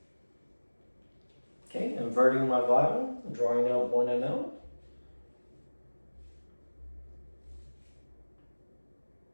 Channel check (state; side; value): inverted; both; correlation -1.00